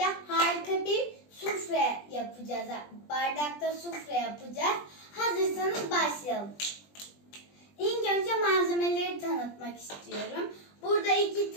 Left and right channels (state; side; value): late; right; 20 ms